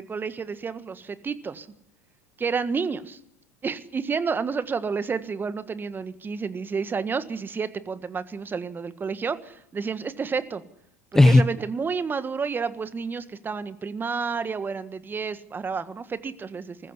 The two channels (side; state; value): both; normal; correlation 0.84